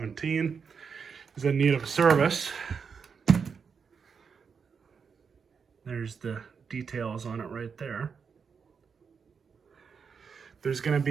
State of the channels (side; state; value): left; quieter; 6.0 dB